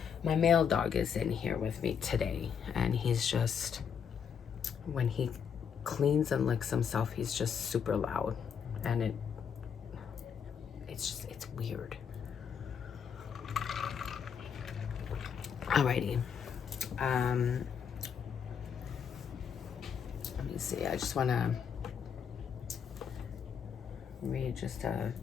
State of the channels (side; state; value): right; quieter; 7.3 dB